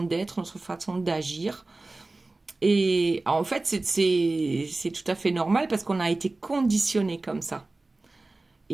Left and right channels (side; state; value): left; quieter; 3.1 dB